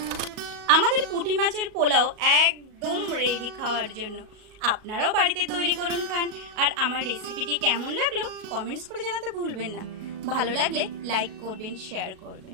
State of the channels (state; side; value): late; left; 37 ms